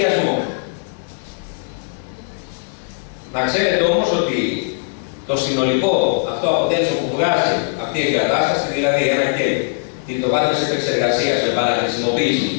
Να ξέρετε όμως ότι το συνολικό αυτό αποτέλεσμα που βγάζει αυτή η εγκατάσταση, δηλαδή ένα κέλ, το βάθος επεξεργασίας με παραχρησιμοποίηση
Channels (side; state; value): right; silent; 56 dB below the other